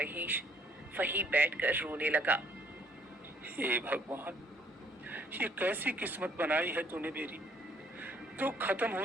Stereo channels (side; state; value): both; normal; correlation 0.63